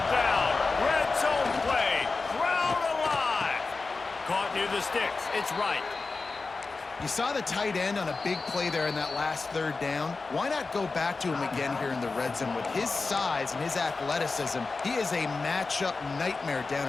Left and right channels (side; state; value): right; quieter; 4.0 dB